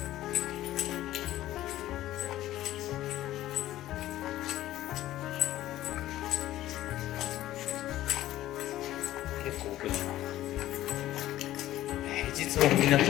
結構奥だな。平日もみんな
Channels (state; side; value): quieter; right; 14.4 dB